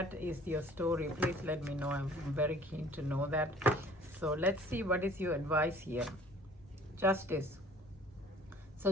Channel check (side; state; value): both; normal; correlation 0.52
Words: is your story, please let me know. I'm very keen to know that. So let's see what is your advice here. Justice. So